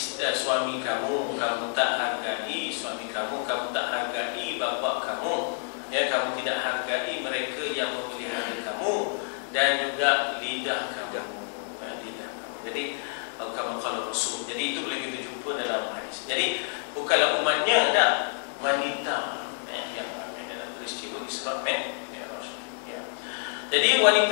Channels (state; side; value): silent; right; 58 dB below the other